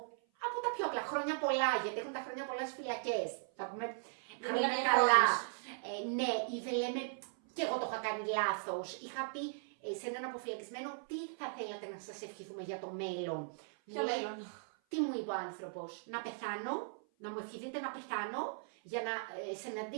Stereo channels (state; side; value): silent; left; 52 dB below the other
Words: από τα πιο απλά, χρόνια πολλά, γιατί έχουν τα χρόνια πολλά στις φυλακές. Θα πούμε χρόνια καλά. Ναι, ή δεν λέμε, και εγώ το είχα κάνει λάθος. Είχα πει σε έναν αποφυλακισμένο, τι θα θέλατε να σας ευχηθούμε για το μέλλον. Ποιο μέλλον? Τι μου είπε ο άνθρωπος, να πεθάνω, να μου ευχηθείτε να πεθάνω, για να